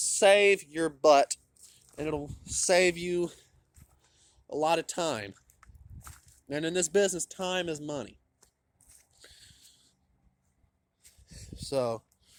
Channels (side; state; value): both; identical; correlation 1.00